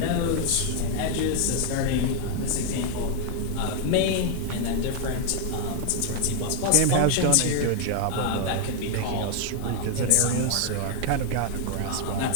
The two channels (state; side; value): different; both; correlation 0.00